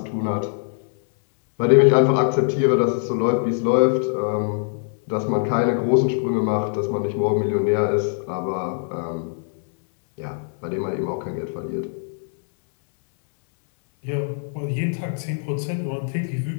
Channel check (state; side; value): silent; right; 64 dB below the other